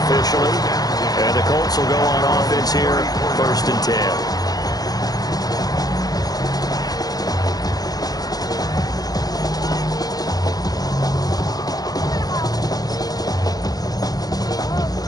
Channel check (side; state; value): right; late; 0.19 ms